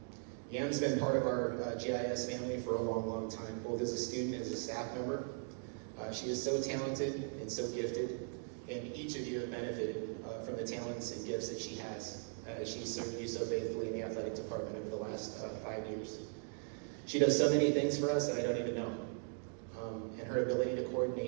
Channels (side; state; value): left; silent; 52 dB below the other